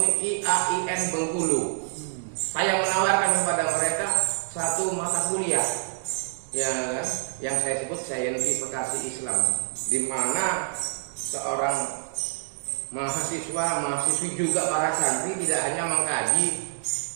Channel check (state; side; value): silent; left; digital silence